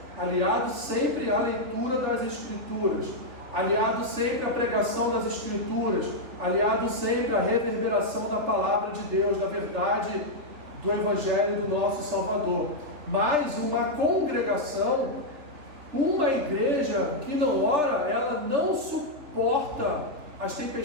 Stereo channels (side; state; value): left; late; 3.5 ms